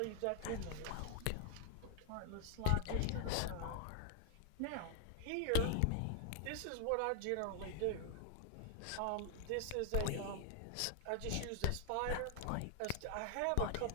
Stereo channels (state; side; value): different; both; correlation 0.00